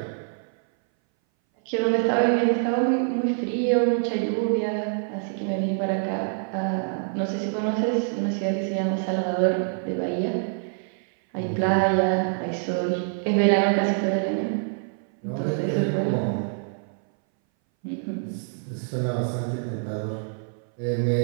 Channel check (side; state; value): left; silent; 60 dB below the other